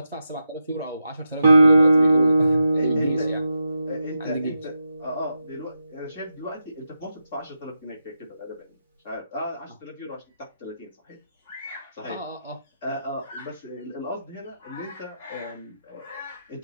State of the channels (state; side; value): inverted; both; correlation -0.88